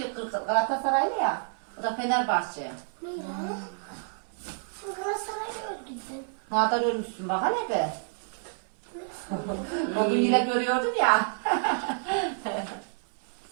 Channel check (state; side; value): silent; left; 59 dB below the other